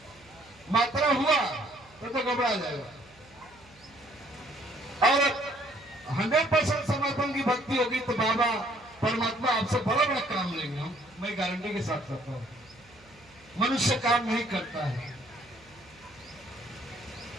मात्रा हुआ तो घबरा जाएगा। और 100% समर्पण की भक्ति होगी तो बाबा परमात्मा आपसे बड़ा बड़ा काम लेंगे। हम, मैं गारंटी के साथ कहता हूं। मनुष्य काम नहीं करता है,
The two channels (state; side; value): noise; right; hum, 27 dB below the sound